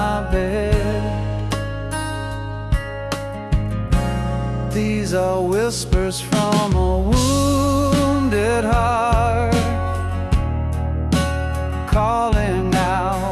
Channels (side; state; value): both; identical; correlation 1.00